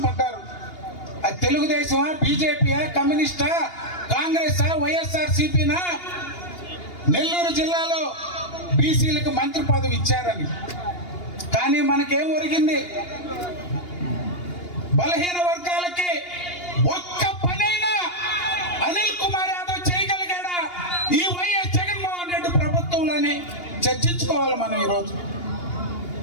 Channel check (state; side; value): late; right; 2.8 ms